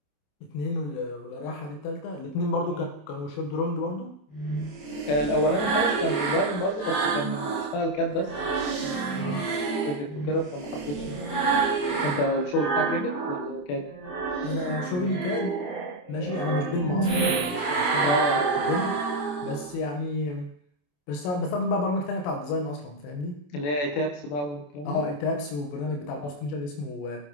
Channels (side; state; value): right; late; 27 ms